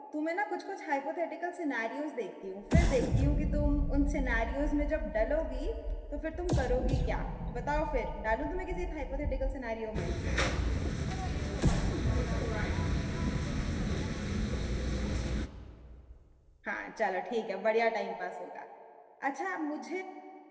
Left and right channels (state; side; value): identical; both; correlation 1.00